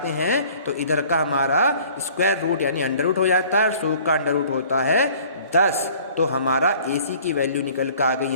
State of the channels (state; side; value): inverted; both; correlation -0.51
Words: हैं तो इधर का हमारा स्क्वायर रूट यानी अंडर रूट हो जाता है और 100 का अंडर रूट होता है 10। तो हमारा AC की वैल्यू निकल कर आ गई